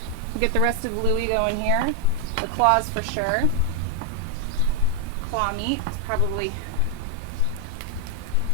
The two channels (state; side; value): different; both; correlation 0.00